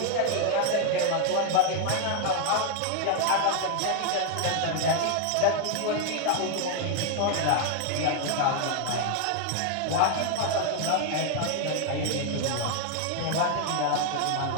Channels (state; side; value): different; both; correlation 0.00